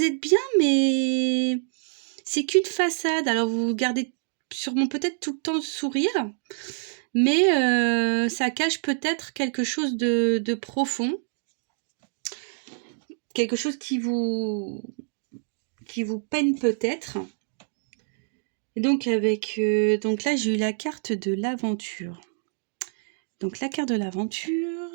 êtes bien, mais c'est qu'une façade. Alors, vous gardez sûrement peut-être tout le temps le sourire, mais ça cache peut-être quelque chose de profond, quelque chose qui vous peine peut-être. Et donc donc là j'ai eu la carte de l'aventure. Donc la carte de l'aventure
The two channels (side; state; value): left; silent; digital silence